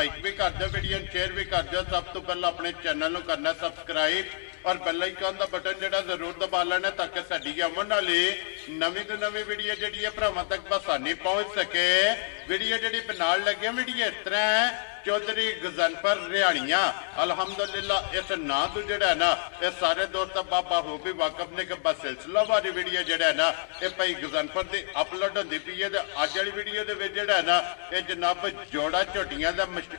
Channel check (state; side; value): silent; right; digital silence